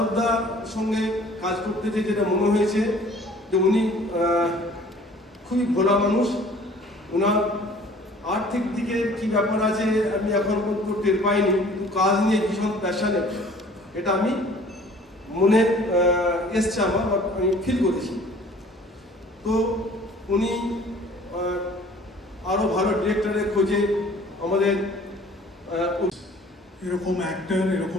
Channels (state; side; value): normal; both; correlation 0.51